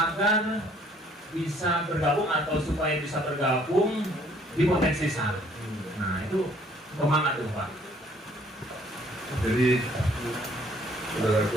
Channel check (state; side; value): normal; both; correlation 0.61